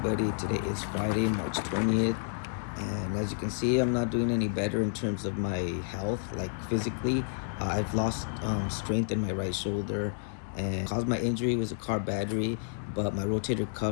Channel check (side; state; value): right; silent; digital silence